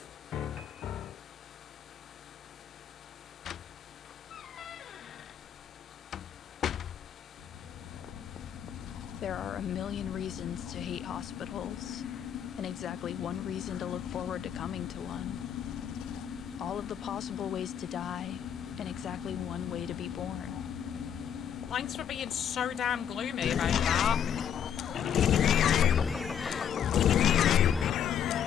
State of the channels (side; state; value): right; quieter; 8.9 dB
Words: There are a million reasons to hate hospitals, and exactly one reason to look forward to coming to one. All of the possible ways to die, and exactly one way to be born. Thanks for being so damn gloomy about that.